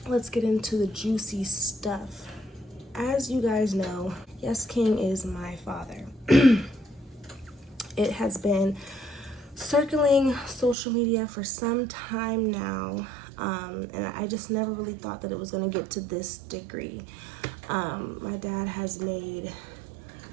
Let's get into the juicy stuff. As you guys know, Yes King is my father. It has been circling social media for some time now. And I just never really thought that it was going to get to this degree. My dad has made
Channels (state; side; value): drops out; left; at 10.8 s